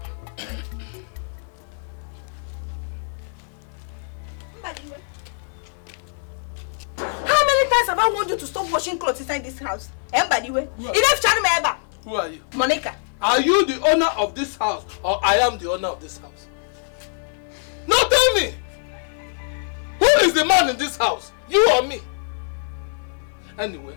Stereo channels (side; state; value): right; silent; 59 dB below the other